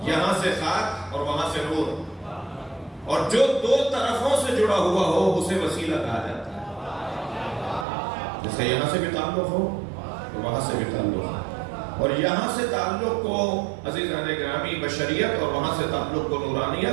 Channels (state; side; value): drops out; left; at 7.9 s